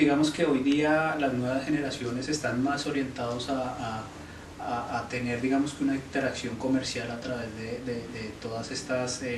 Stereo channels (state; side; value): identical; both; correlation 1.00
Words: que hoy día las nuevas generaciones están más orientados a tener, digamos que una interacción comercial a través de todas estas